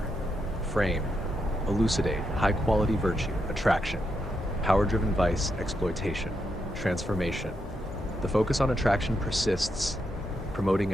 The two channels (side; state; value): both; normal; correlation 0.82